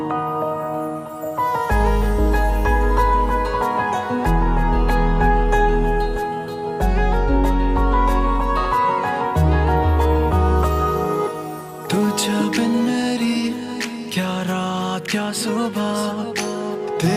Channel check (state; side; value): identical; both; correlation 1.00